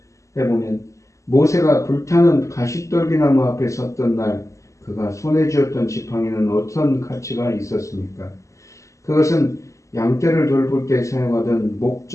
해보면 모세가 불타는 가시떨기나무 앞에 섰던 날 그가 손에 쥐었던 지팡이는 어떤 가치가 있었습니까? 그것은 양떼를 돌볼 때 사용하던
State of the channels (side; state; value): right; late; 0.15 ms